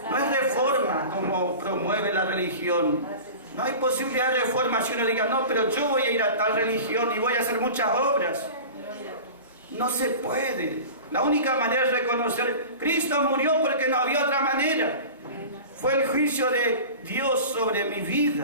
No es reforma como promueve la religión. No hay posibilidad de reforma si uno diga, no, pero yo voy a ir a tal religión y voy a hacer muchas obras. No se puede. La única manera es reconocer, Cristo murió porque no había otra manera. Fue el juicio de Dios sobre mi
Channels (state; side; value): inverted; both; correlation -0.35